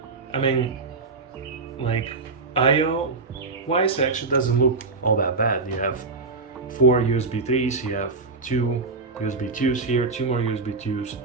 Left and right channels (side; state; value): left; quieter; 4.0 dB